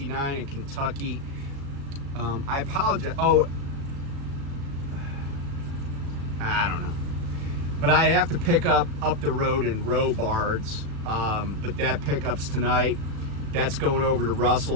in Kentucky. I apologize. Oh, I don't know. But I have to pick up the road in Robards. But that pickup's tonight. That's going over to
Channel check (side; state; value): left; late; 36 ms